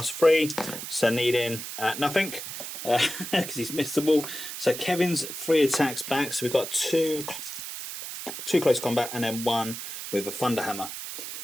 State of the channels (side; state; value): right; noise; hiss, 8 dB below the sound